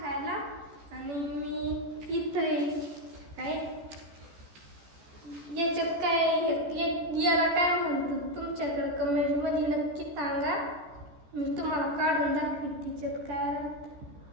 आणि मी इथं काय याच्यात याला काय म्हणतात तुमच्याकडे कमेंटमध्ये नक्की सांगा. मी तुम्हाला काढून दाखवीन तिच्यात काय राहतं.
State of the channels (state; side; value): late; left; 14 ms